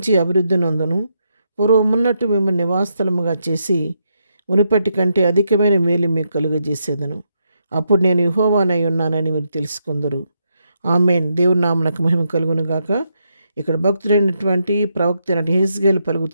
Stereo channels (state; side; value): inverted; both; correlation -0.80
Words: అభివృద్ధి నొందును. పూర్వమున్నట్టు మిమ్మల్ని నివాసస్థలముగా చేసి మునుపటి కంటే అధికమైన మేలు మీకు కలుగజేసేదను. అప్పుడు నేను యెహోవానై ఉన్నానని మీరు తెలుసుకుందరు. ఆమేన్. దేవుని నామమునకు మహిమ కలుగును గాక. ఇక్కడ భక్తుడైనటువంటి ప్రవక్త అయిన యెహెజ్కేలు